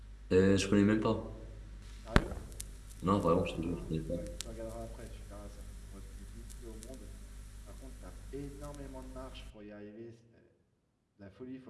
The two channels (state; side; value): identical; both; correlation 1.00